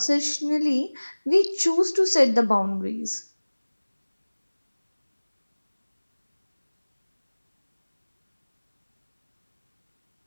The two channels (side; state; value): both; inverted; correlation -1.00